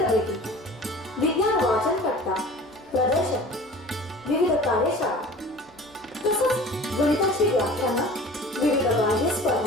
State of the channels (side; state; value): both; normal; correlation 0.43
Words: विज्ञान वाचन कट्टा, प्रदर्शन, विविध कार्यशाळा तसंच गणिताची व्याख्यानं, विविध बाह्य